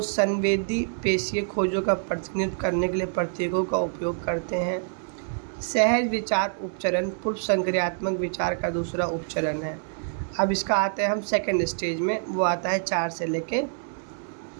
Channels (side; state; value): left; silent; digital silence